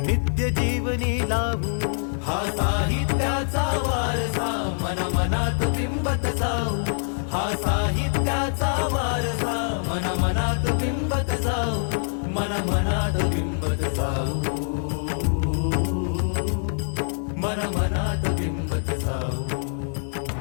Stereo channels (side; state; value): right; silent; digital silence